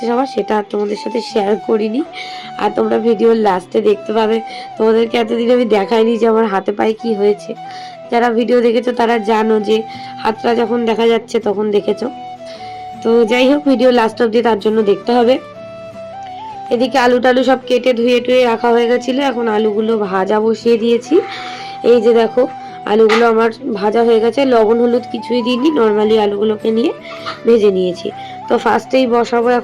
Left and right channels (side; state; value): both; identical; correlation 1.00